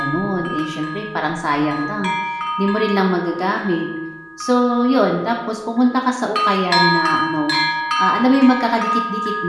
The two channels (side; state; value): both; identical; correlation 1.00